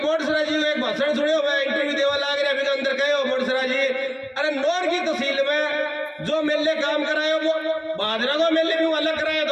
बोडसरा जी एक भाषण सुनियो, मैं इंटरव्यू देवा लाग रहा अभी अंदर कहो बोडसरा जी, अरे नौर की तहसील में जो मेले काम करायो वो बादरा को मेले भी अलग कराया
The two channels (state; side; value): identical; both; correlation 1.00